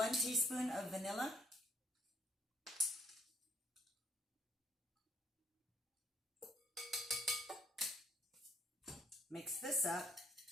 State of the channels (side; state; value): both; normal; correlation 0.65